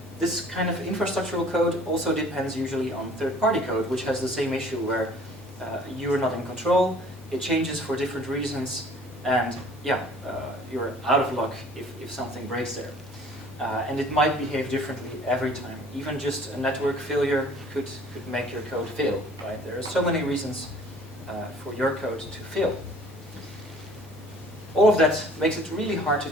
This kind of infrastructural code also depends usually on third-party code, which has the same issue where you're not in control, it changes for different reasons, and yeah, you're out of luck if something breaks there. And it might behave differently every time. Even just a network failure could make your code fail, right? There are so many reasons for your code to fail. All of that makes it really hard to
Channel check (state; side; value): normal; both; correlation 0.52